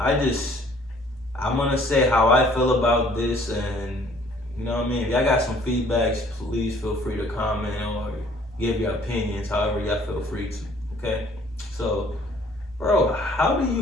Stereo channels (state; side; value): normal; both; correlation 0.57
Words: I'm gonna say how I feel about this, and you know what I mean? If y'all got some feedbacks, please feel free to comment or give your opinions, however y'all feel free to, okay? So, bro, how do